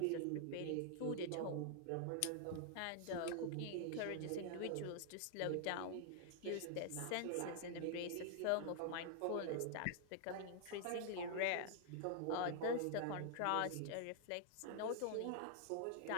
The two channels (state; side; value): different; both; correlation 0.00